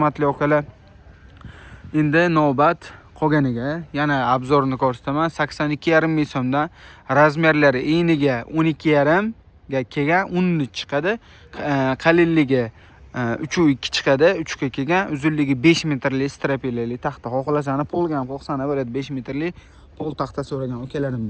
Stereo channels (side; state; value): both; identical; correlation 1.00